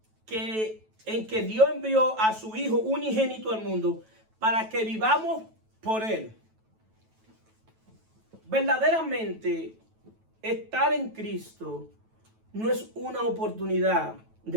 en que Dios envió a su Hijo unigénito al mundo para que vivamos por Él. Verdaderamente, estar en Cristo no es una oportunidad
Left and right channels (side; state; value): left; late; 9.2 ms